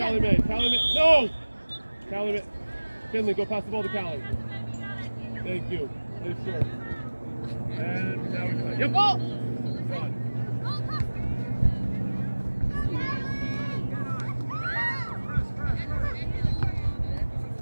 Callie May. Callie May. No! Callie May. Finley, go pass the ball to Callie. Thank you. Please, sure. And now we go. Yep. Go. Good.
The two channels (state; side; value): inverted; both; correlation -1.00